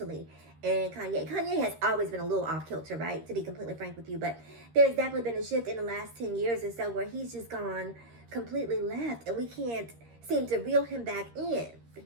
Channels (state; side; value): late; left; 13 ms